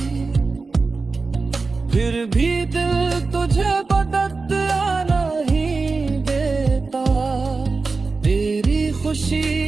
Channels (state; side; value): quieter; left; 4.1 dB